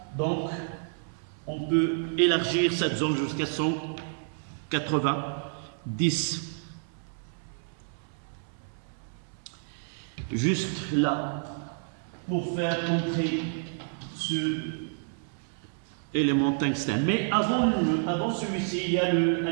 Donc, on peut élargir cette zone jusqu'à 190. Juste là, pour faire entrer ce élément tungstène. Mais avant celui-ci, il y a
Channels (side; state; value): left; silent; 58 dB below the other